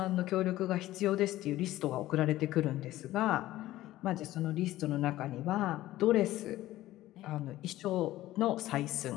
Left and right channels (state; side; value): quieter; right; 15.5 dB